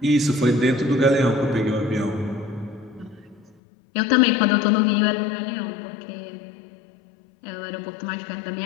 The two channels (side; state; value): right; drops out; at 3.6 s